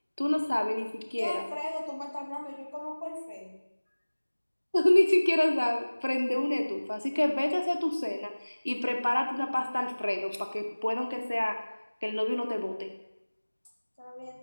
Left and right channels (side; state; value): both; inverted; correlation -1.00